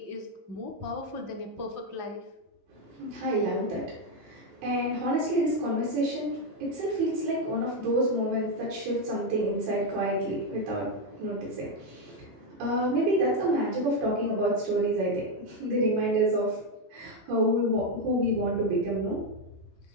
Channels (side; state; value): left; late; 15 ms